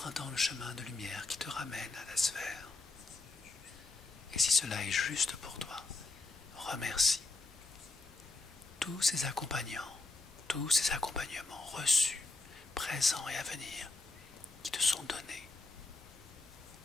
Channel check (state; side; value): quieter; right; 3.3 dB